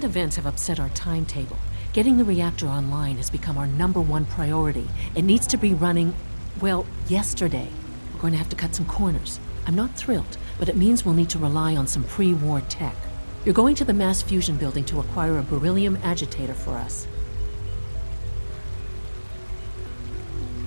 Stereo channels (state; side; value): inverted; both; correlation -1.00